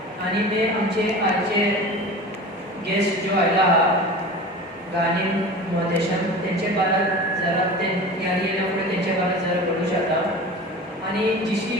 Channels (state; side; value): normal; both; correlation 0.35